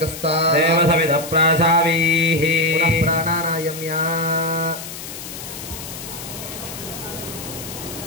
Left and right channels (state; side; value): noise; left; hiss, 11 dB below the sound